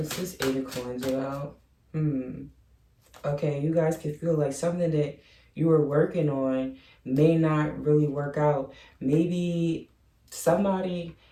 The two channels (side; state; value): both; identical; correlation 1.00